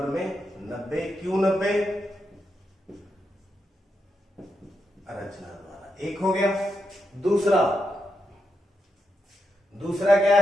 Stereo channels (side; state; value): both; normal; correlation 0.84